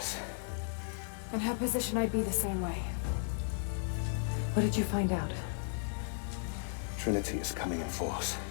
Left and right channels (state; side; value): silent; right; digital silence